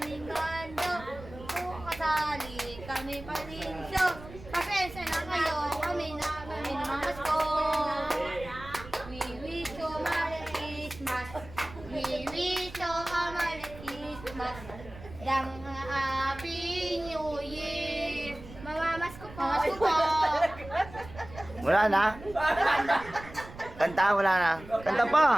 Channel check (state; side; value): noise; right; rumble, 16 dB below the sound